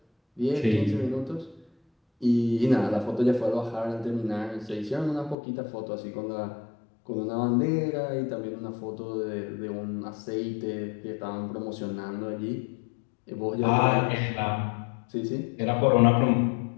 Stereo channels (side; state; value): right; drops out; at 5.4 s